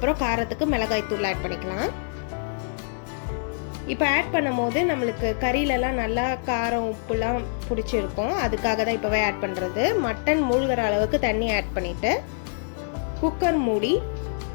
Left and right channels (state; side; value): silent; right; 58 dB below the other